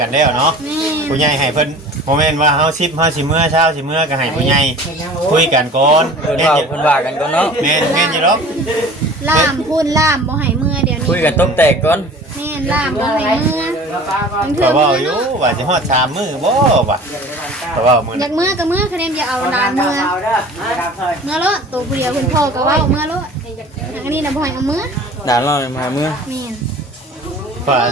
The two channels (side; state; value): both; normal; correlation 0.43